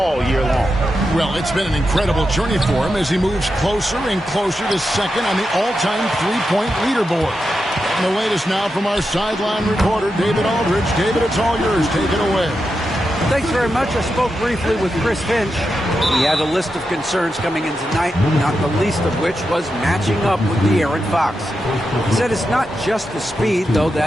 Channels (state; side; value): normal; both; correlation 0.88